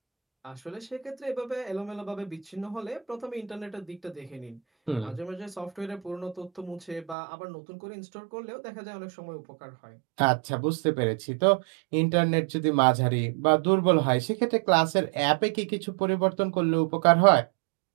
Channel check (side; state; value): left; drops out; at 7.2 s